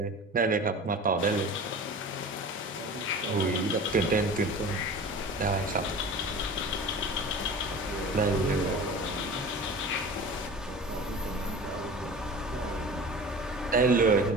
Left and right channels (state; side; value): normal; both; correlation 0.37